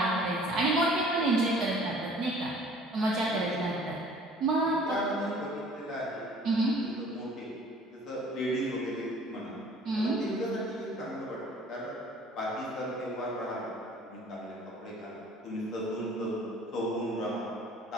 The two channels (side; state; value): both; normal; correlation 0.51